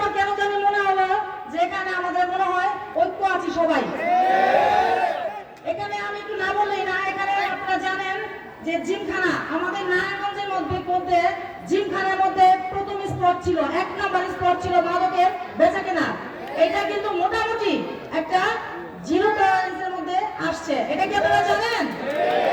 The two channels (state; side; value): identical; both; correlation 1.00